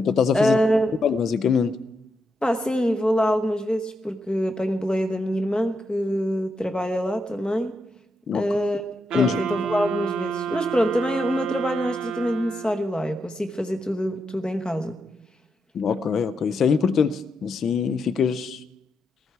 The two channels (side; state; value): both; normal; correlation 0.83